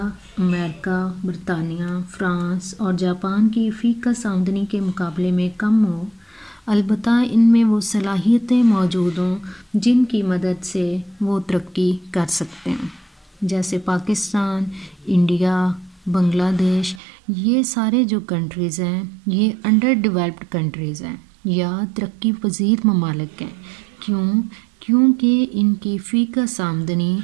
امریکہ، برطانیہ، فرانس اور جاپان کی فی کس آمدنی کے مقابلے میں کم ہو، البتہ ان میں وہ صلاحیتیں موجود ہوں جن کی مدد سے وہ ترقی کر سکتے ہیں، جیسے پاکستان، انڈیا، بنگلہ دیش. یہ سارے جو کنٹریز ہیں یہ انڈر ڈیولپڈ کنٹریز ہیں یا ترقی پذیر ممالک ہیں. کیونکہ ان کی فی کس آمدنی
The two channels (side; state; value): left; drops out; at 17.0 s